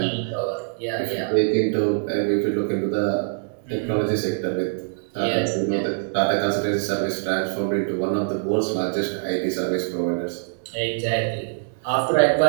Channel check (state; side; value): silent; left; digital silence